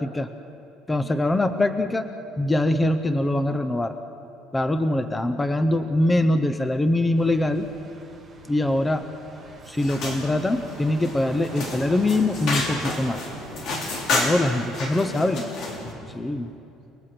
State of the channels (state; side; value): normal; both; correlation 0.87